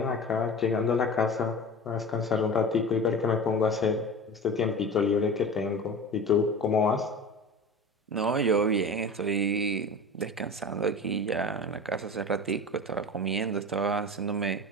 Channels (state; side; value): normal; both; correlation 0.33